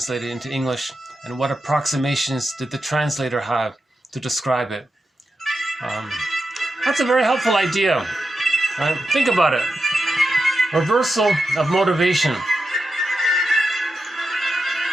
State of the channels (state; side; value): normal; both; correlation 0.89